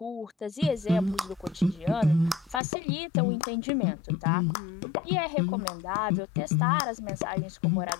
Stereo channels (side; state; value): right; drops out; at 2.6 s